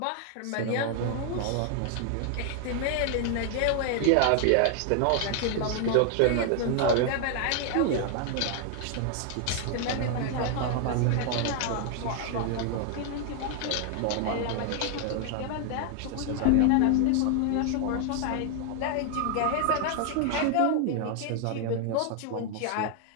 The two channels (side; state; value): both; different; correlation 0.00